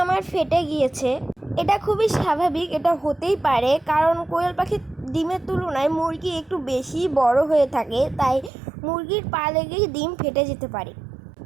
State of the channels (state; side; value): drops out; left; at 8.5 s